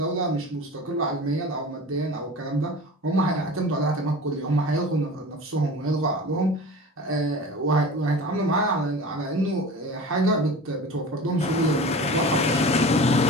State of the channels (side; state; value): both; normal; correlation 0.36